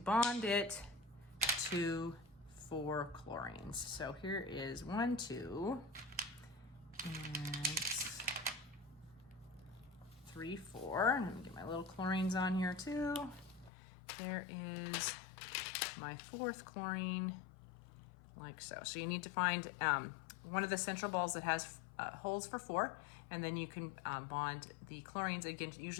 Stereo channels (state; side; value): drops out; right; at 13.7 s